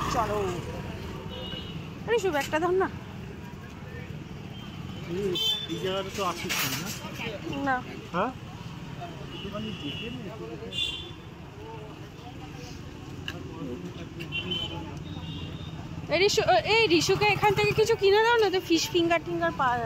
চলো। আরে শুভ একটা ধর না। এই জায়গাটা তো আসিস না। হ্যাঁ এই রিশুকে এখান থেকে কিছু কিনে দাও না, তো ফিশ ফিঙ্গার টিঙ্গার পাওয়া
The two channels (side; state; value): both; identical; correlation 1.00